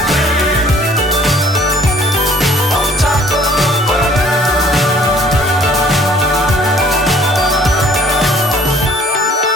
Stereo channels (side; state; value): both; normal; correlation 0.56